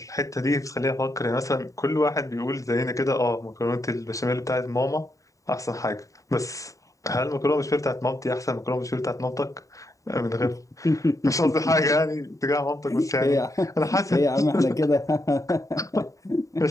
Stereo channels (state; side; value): late; right; 0.16 ms